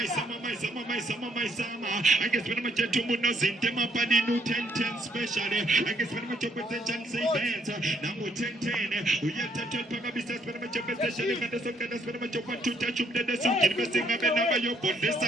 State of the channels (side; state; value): both; normal; correlation 0.70